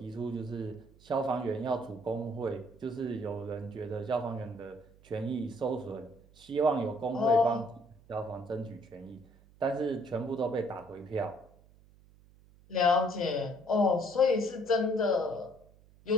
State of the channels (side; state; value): right; noise; hum, 26 dB below the sound